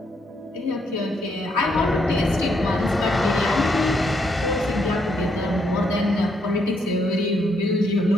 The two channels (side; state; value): both; normal; correlation 0.75